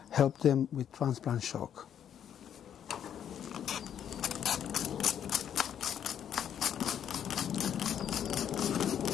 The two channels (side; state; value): right; quieter; 9.3 dB